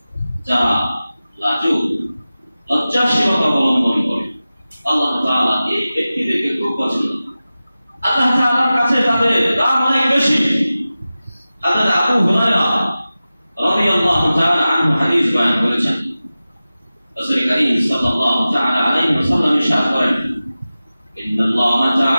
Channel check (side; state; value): both; inverted; correlation -0.95